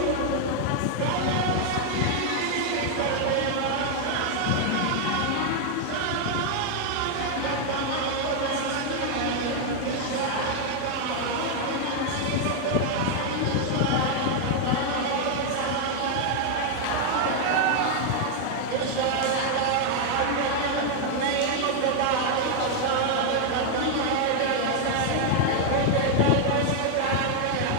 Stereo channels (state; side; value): different; both; correlation 0.00